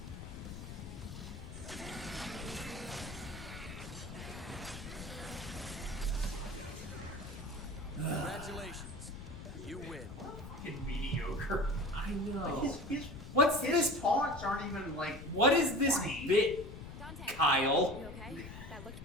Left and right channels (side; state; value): left; noise; rumble, 11 dB below the sound